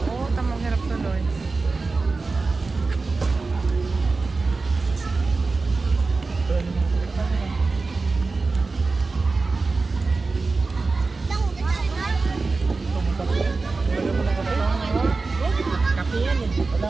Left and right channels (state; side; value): quieter; left; 3.9 dB